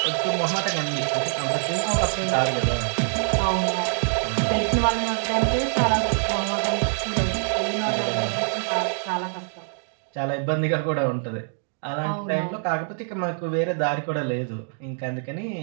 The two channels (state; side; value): silent; left; digital silence